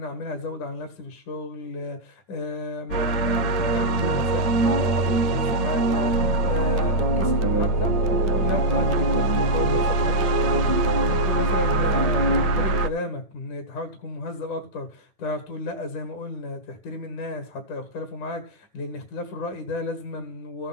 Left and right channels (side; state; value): right; late; 9.0 ms